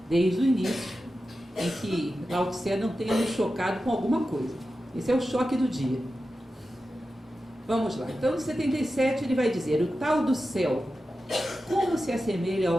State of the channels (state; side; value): normal; both; correlation 0.92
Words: desde o início, em que Lao Tse não tenha nos chocado com alguma coisa. Esse é o choque do dia. Vamos lá. Então, no 77, ele vai dizer: o tal do céu, como se assemelha